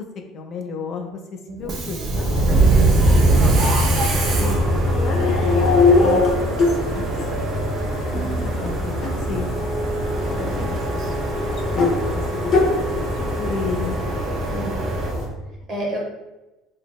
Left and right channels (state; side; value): normal; both; correlation 0.58